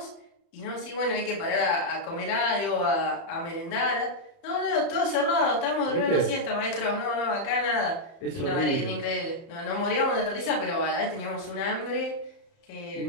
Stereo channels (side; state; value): right; late; 30 ms